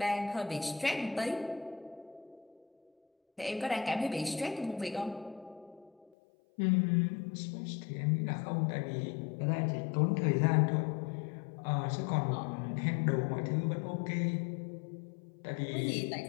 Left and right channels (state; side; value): drops out; right; at 6.1 s